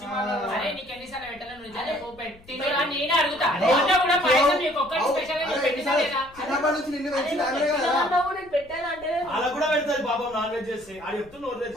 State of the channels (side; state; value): left; noise; rumble, 25 dB below the sound